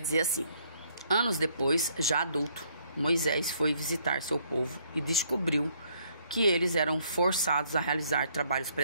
dizer assim: anos depois, já adulto, Moisés foi visitar seu povo e descobriu que eles eram forçados a realizar trabalhos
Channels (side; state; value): both; inverted; correlation -0.67